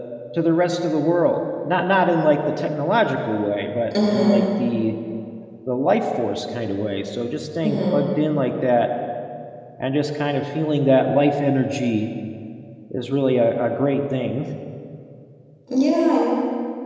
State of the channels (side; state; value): both; identical; correlation 1.00